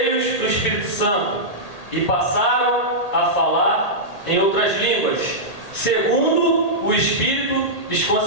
do Espírito Santo e passaram a falar em outras línguas, segundo o Espírito lhes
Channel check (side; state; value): right; late; 1.8 ms